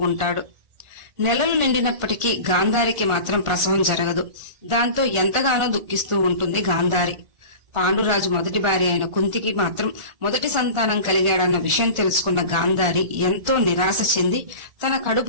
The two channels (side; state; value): left; late; 1.4 ms